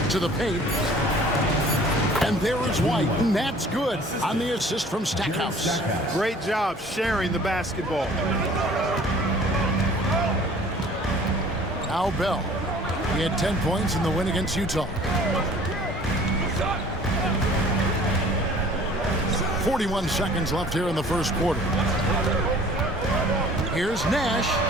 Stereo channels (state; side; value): normal; both; correlation 0.50